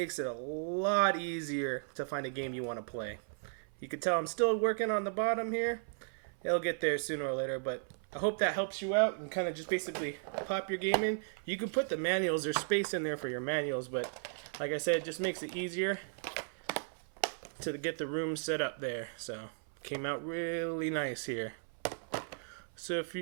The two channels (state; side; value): silent; left; 54 dB below the other